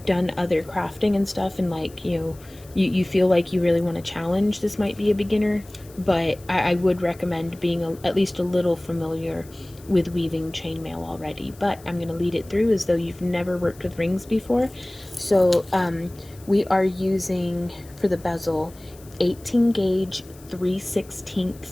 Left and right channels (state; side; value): noise; left; hiss, 24 dB below the sound